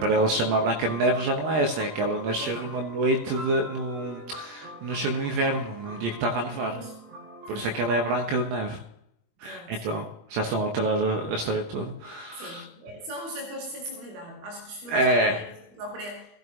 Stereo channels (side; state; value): left; late; 21 ms